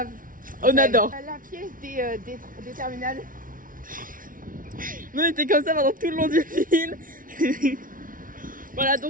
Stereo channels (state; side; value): late; left; 0.39 ms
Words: on adore. La pièce des terminales. On était comme ça pendant tout le long du film. Voilà,